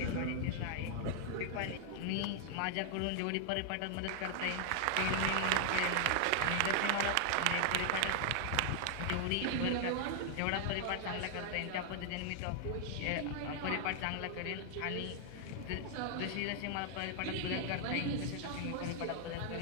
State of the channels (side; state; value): both; different; correlation 0.00